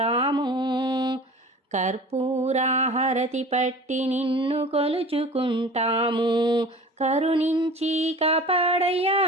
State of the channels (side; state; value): both; normal; correlation 0.40